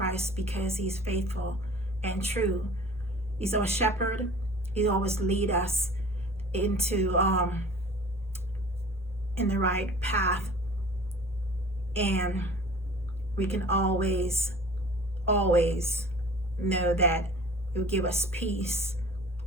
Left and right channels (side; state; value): both; normal; correlation 0.44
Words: because He's faithful and true. He's our shepherd. He always lead us into in the right path, and we can always know that He will give us peace.